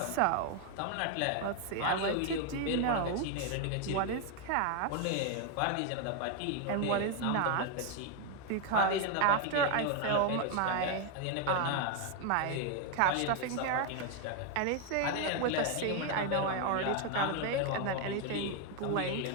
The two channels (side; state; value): both; different; correlation 0.01